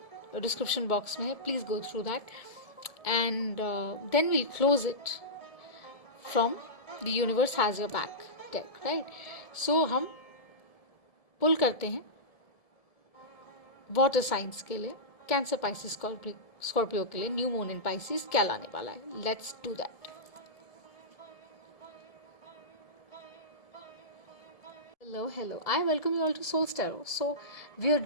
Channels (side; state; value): right; late; 1.7 ms